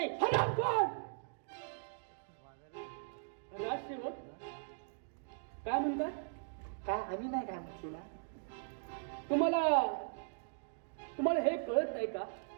राजसेवक काय म्हणतात. काय आम्ही नाही काय म्हटलं ना. तुम्हाला हे कळत नाही का,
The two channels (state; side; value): silent; left; digital silence